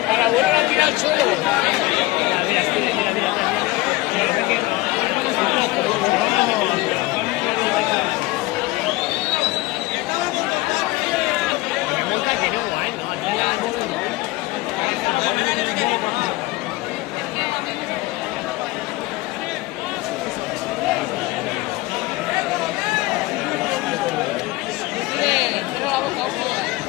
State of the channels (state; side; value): quieter; right; 20.4 dB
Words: a la abuela la tira al suelo.